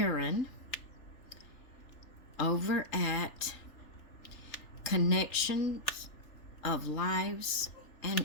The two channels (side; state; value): right; late; 3.4 ms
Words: over at Connections of Lives